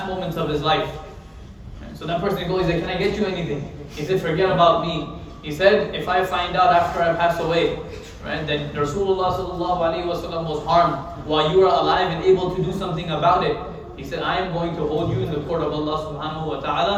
moments of his life. Right? So that person goes, he said, can I get you anything? He said, forget about me. He said, if I find out after I pass away, right, that Rasulullah sallallahu alaihi wasallam was harmed while you are alive and able to do something about it, he said, I am going to hold you in the court of Allah subhanahu wa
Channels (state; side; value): identical; both; correlation 1.00